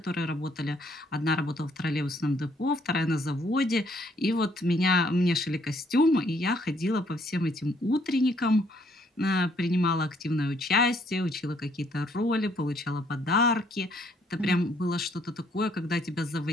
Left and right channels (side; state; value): both; normal; correlation 0.67